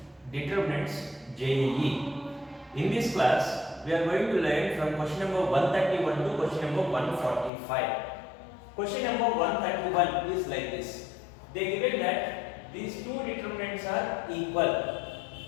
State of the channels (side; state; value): right; drops out; at 7.5 s